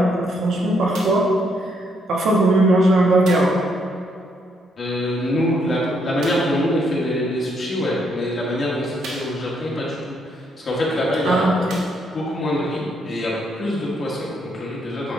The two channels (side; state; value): both; normal; correlation 0.74